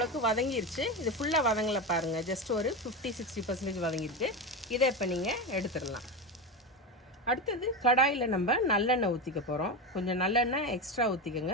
வதங்கிருச்சு. இது ஃபுல்லாக வதங்கலை பாருங்கள், ஜஸ்ட் ஒரு 50-60% வதங்கிருக்கு. இதை இப்போ நீங்கள் எடுத்துடலாம். அடுத்தது கடாயில் நம்ம நல்லெண்ணெய் ஊற்றிக்க போகிறோம். கொஞ்சம் நல்லெண்ணெய் எக்ஸ்ட்ரா ஊற்றிக்கோங்க,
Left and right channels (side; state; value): both; normal; correlation 0.18